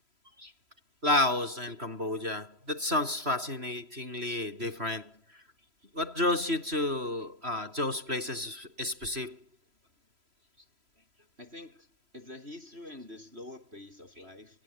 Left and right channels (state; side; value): late; left; 3.0 ms